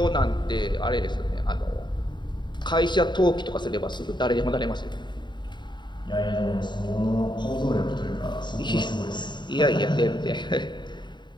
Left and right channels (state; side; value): late; right; 0.22 ms